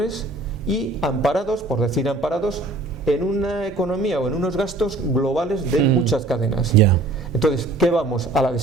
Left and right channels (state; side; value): quieter; left; 3.0 dB